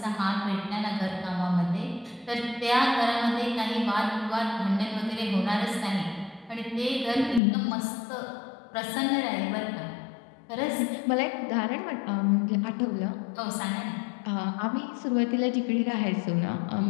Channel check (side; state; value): right; drops out; at 7.4 s